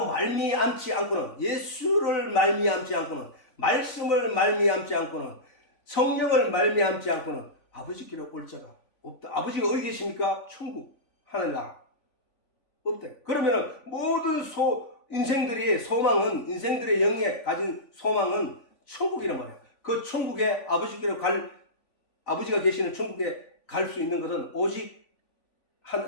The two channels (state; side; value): late; right; 3.5 ms